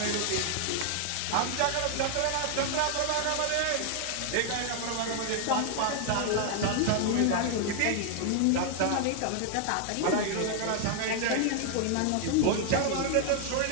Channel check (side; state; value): both; different; correlation 0.00